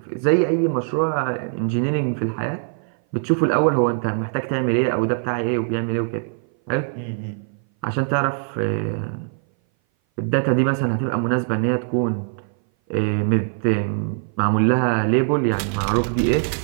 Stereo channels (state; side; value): silent; left; 59 dB below the other